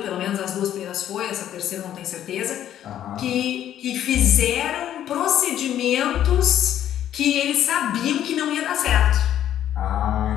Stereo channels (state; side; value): quieter; right; 11.1 dB